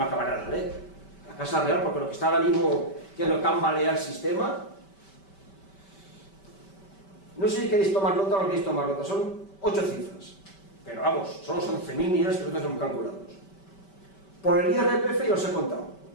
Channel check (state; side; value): late; right; 5.2 ms